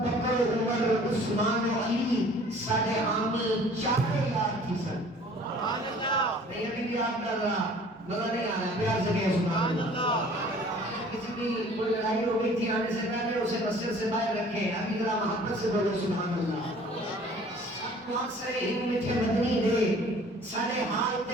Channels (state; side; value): normal; both; correlation 0.51